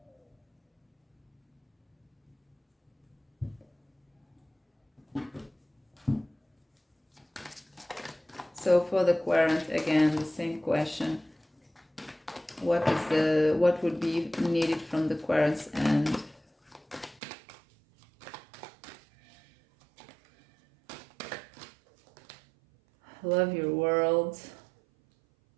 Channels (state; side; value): drops out; left; at 17.2 s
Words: So for the Querent, again, the same question. What would be needed from the Querent's end? Love your world.